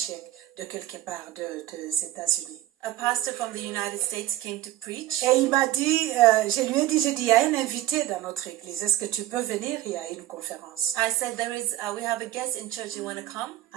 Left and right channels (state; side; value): quieter; left; 14.8 dB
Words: de quelque part des États-Unis. A pastor from the United States came to preach. Et il m'a dit, je lui ai dit, il y a un invité dans notre église. Est-ce que tu peux venir? Il y a une conférence. I said, we have a guest in church, you want to come?